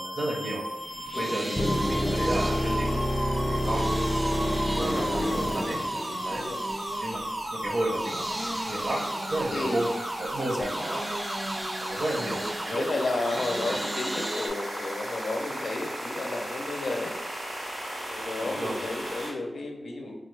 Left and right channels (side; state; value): both; normal; correlation 0.94